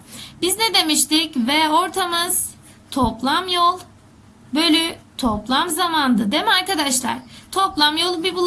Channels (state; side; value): identical; both; correlation 1.00